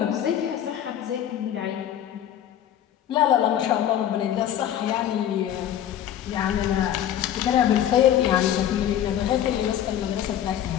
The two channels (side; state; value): right; quieter; 10.7 dB